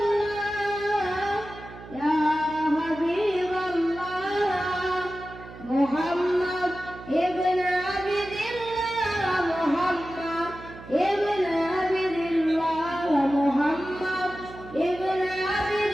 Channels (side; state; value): right; noise; hum, 16 dB below the sound